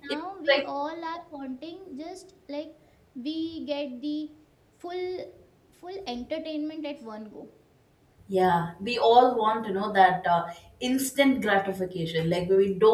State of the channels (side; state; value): both; identical; correlation 1.00